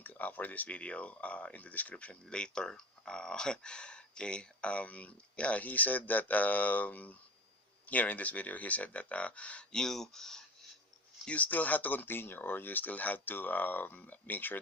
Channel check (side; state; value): both; normal; correlation 0.31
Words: for this video in the description later. Okay. Yeah, he said that here in this video, he said that you you still have to continue, or you still have to make sure